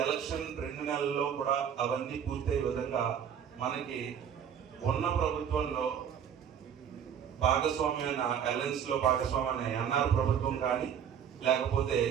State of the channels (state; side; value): quieter; left; 8.4 dB